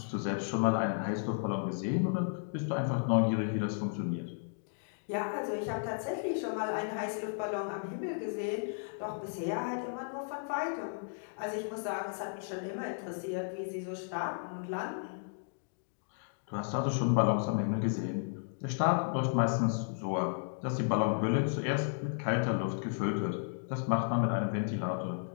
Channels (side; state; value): right; silent; digital silence